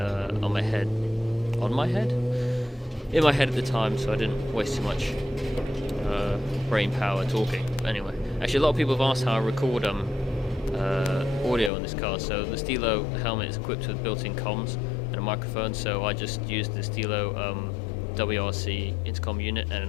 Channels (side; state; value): right; drops out; at 11.7 s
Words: my head at the time, so I didn't waste too much brain power talking. But anyway, actually a lot of people have asked how I record audio on this car. So the Stilo helmet is equipped with built-in comms and a microphone, so I just used the Stilo WRC intercom unit and an